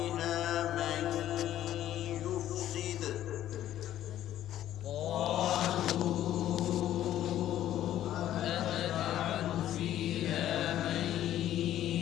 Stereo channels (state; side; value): quieter; right; 12.4 dB